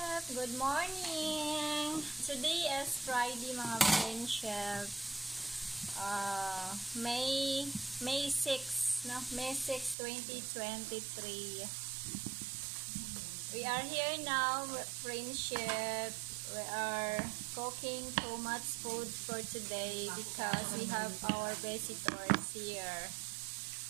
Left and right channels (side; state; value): left; drops out; at 10.0 s